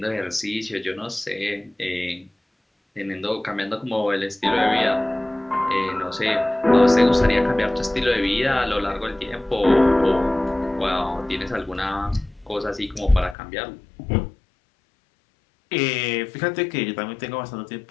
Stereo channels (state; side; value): drops out; right; at 13.4 s